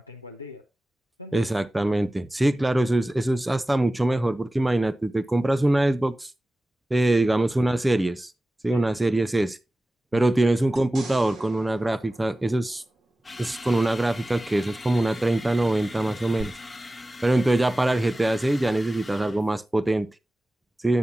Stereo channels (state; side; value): normal; both; correlation 0.96